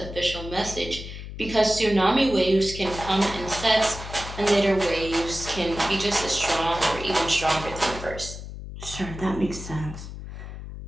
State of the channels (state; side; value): noise; left; hum, 10 dB below the sound